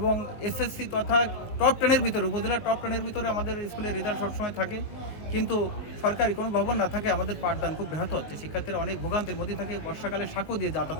এসএসসি তথা টপ 10-এর ভিতরে, উপজেলার টপ 10-এর ভিতরে আমাদের স্কুলের রেজাল্ট সবসময় থাকে। কিন্তু সরকারি কোনো ভবন না থাকে আমাদের পাঠদান খুব ব্যাহত হচ্ছে। শিক্ষার্থীরা অনেক ভোগান্তির মধ্যে থাকে। বর্ষাকালে সাঁকো দিয়ে যাতায়াত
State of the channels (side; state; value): right; late; 19 ms